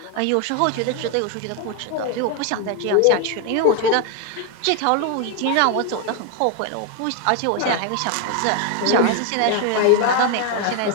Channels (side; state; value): both; different; correlation 0.01